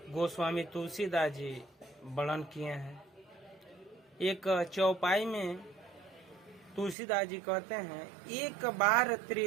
गोस्वामी तुलसीदास जी वर्णन किए हैं। एक चौपाई में तुलसीदास जी कहते हैं, एक बार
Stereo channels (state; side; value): drops out; left; at 7.0 s